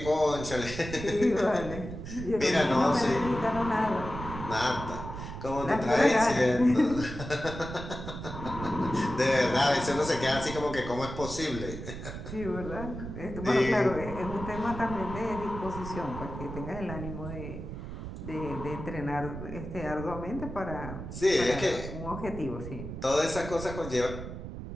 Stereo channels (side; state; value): right; noise; rumble, 9 dB below the sound